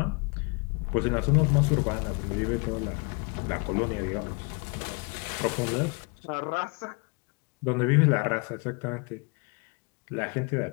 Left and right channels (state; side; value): quieter; right; 32.2 dB